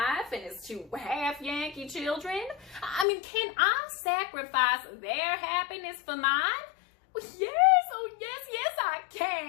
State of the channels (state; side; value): drops out; right; at 3.1 s